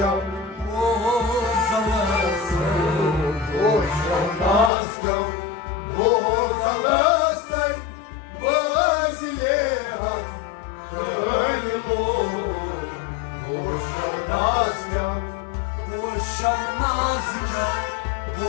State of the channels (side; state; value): right; drops out; at 4.7 s